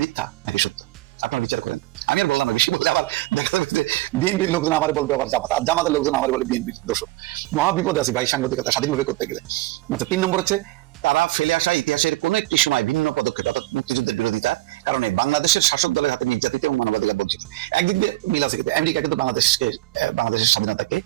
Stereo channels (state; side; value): quieter; left; 18.3 dB